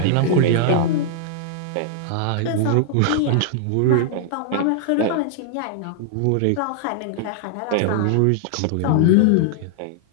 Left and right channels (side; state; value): both; different; correlation -0.01